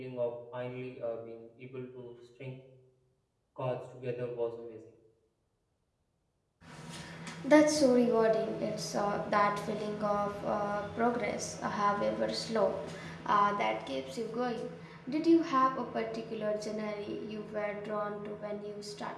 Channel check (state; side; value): identical; both; correlation 1.00